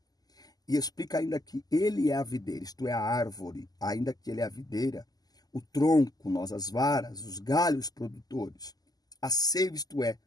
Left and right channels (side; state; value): right; late; 0.18 ms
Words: E explica ainda que ele é a videira, isto é, a árvore, ainda que ele é a videira, o tronco, nós as varas, os galhos produtores. A seiva, isto é,